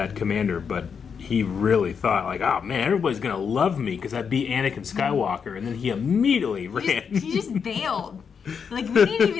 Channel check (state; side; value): quieter; right; 6.5 dB